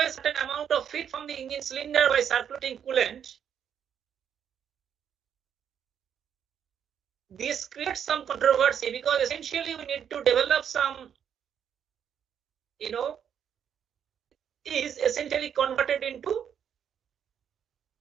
a certain amount of heat from the engine cylinder by circulating coolant, this creates some controversy because essentially we need to develop some, is essentially converted into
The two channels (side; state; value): left; quieter; 8.5 dB